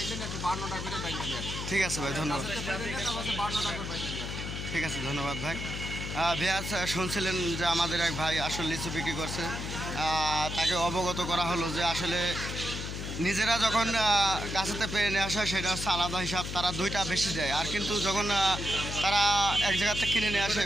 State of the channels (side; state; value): left; noise; hum, 6 dB below the sound